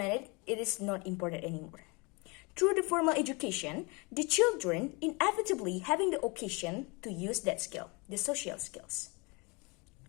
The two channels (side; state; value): right; quieter; 28.9 dB